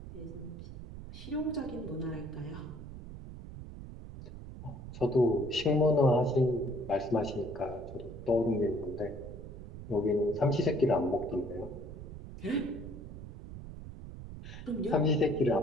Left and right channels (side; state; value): right; noise; rumble, 12 dB below the sound